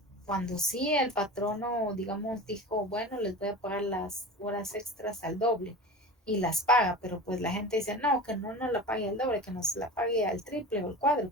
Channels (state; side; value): normal; both; correlation 0.32